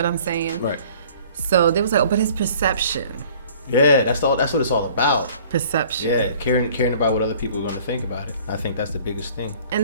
I'm saying? Right. So they was like, oh, but it's perception. Yeah, that's what it's all about. Perception. Yeah, caring about what other people are going to think about it. I think that's the biggest thing.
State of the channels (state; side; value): inverted; both; correlation -0.52